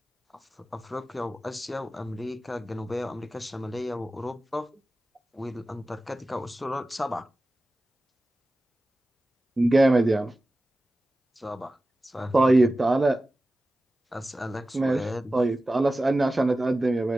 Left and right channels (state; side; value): normal; both; correlation 0.95